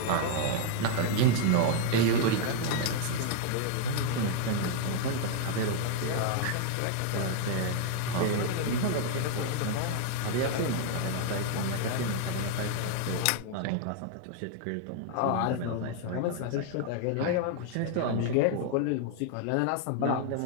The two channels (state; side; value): different; both; correlation 0.00